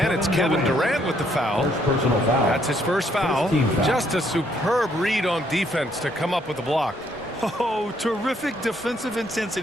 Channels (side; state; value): both; normal; correlation 0.69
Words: it's Kevin Durant with the foul. That's his first foul. Just a superb read on defense to come up with the block. Oh, terrific defensive